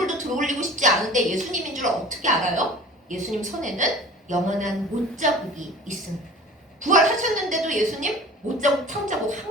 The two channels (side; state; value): both; normal; correlation 0.42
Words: 들어올리고 싶지 않은데 예수님인 줄 어떻게 알아요? 예수님 손에는 영원한 못자국이 있습니다. 부활하셨는데도 예수님 못자국 탕자국